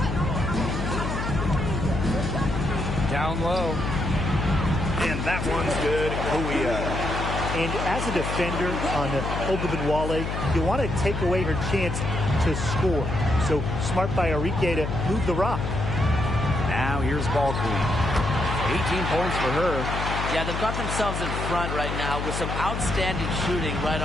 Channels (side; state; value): left; noise; hum, 3 dB below the sound